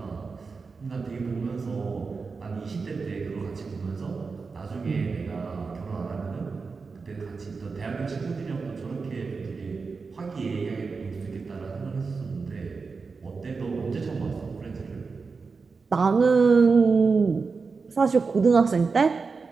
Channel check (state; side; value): quieter; left; 4.7 dB